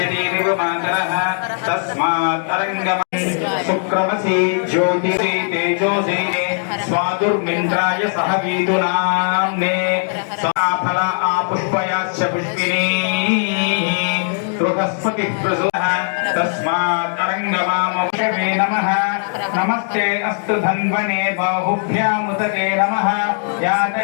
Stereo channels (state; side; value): silent; right; 67 dB below the other